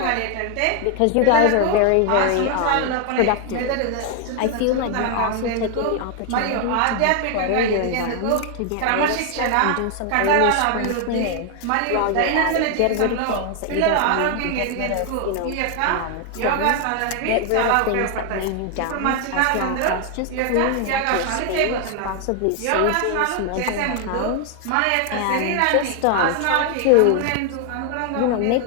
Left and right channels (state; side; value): different; both; correlation 0.00